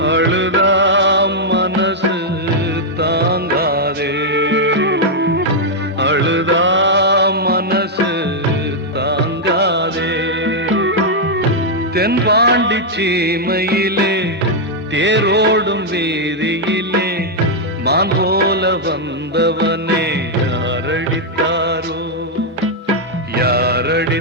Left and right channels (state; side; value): normal; both; correlation -0.03